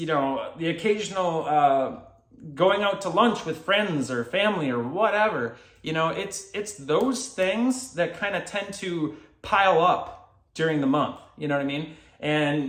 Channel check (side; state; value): both; identical; correlation 1.00